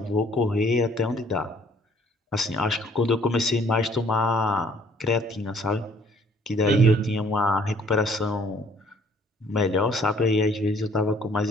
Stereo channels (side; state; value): both; normal; correlation 0.60